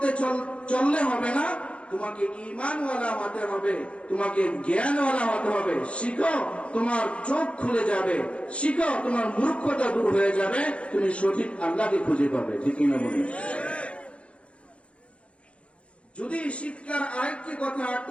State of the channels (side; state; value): right; late; 0.060 ms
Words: চললে হবে না, তোমাকে ঈমানওয়ালা হতে হবে, তোমাকে জ্ঞানওয়ালা হতে হবে। শিখো, তোমার চোখ খুলে যাবে, শিখো, তোমার মূর্খতা দূর হয়ে যাবে, তুমি সঠিক আল্লাহকে খুঁজে পাবে, ঠিক না বলি? যদি শিক্ষার আরেকটি কথা